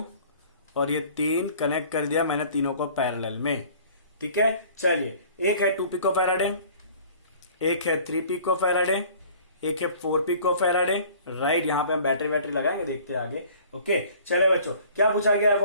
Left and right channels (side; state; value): both; inverted; correlation -0.50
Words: और ये 3 कनेक्ट कर दिया मैंने तीनों को पैरेलल में। ठीक है, चलिए एक है 2 पिको फैराडे, एक है 3 पिको फैराडे, एक है 4 पिको फैराडे। राइट, यहां पे हम बैटरी लगाएंगे, देखते हैं आगे। ओके, चलो बच्चों क्या पूछा गया,